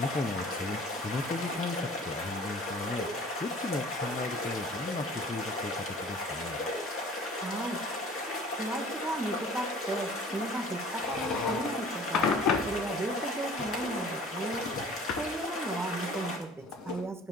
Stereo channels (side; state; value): both; normal; correlation 0.48